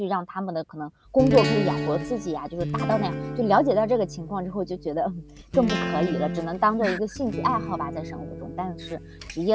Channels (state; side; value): identical; both; correlation 1.00